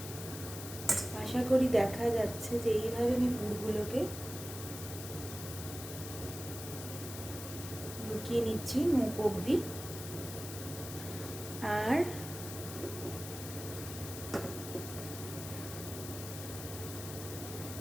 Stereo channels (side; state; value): left; noise; hiss, 9 dB below the sound